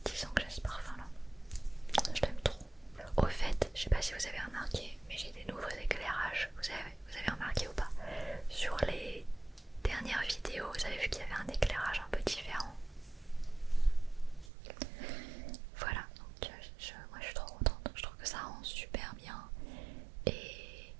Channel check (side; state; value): left; drops out; at 14.5 s